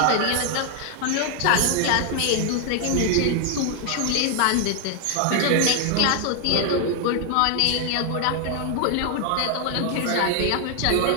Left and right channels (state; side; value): different; both; correlation 0.00